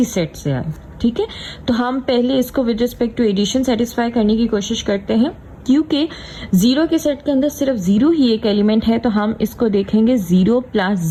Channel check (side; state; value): both; identical; correlation 1.00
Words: सेट से आए। ठीक है, तो हम पहले इसको with respect to addition satisfy करने की कोशिश करते हैं। क्योंकि जीरो के सेट के अंदर सिर्फ जीरो ही एक एलिमेंट है, तो हम इसको देखेंगे 0 +